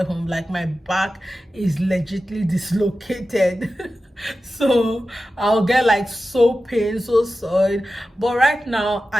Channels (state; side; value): normal; both; correlation 0.93